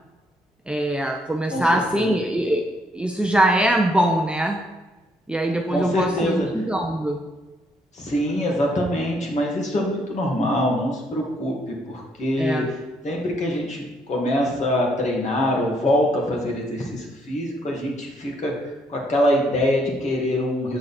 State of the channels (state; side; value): normal; both; correlation 0.71